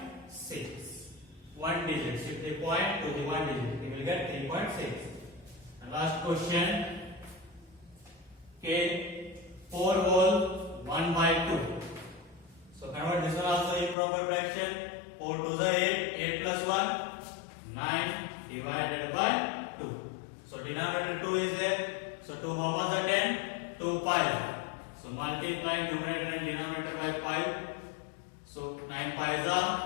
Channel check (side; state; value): right; drops out; at 14.0 s